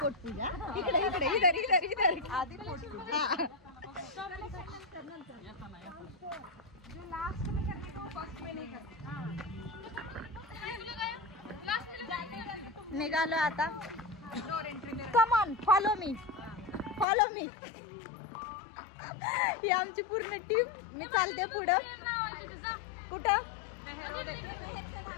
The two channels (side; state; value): right; drops out; at 17.1 s